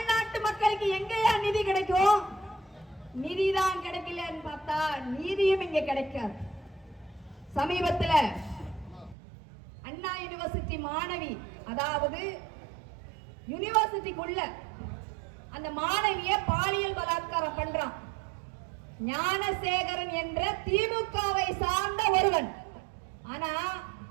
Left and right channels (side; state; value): left; drops out; at 9.2 s